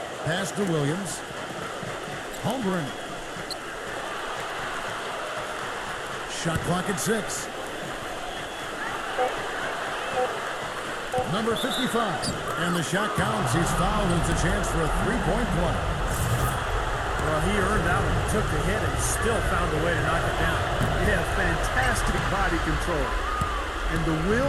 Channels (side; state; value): both; identical; correlation 1.00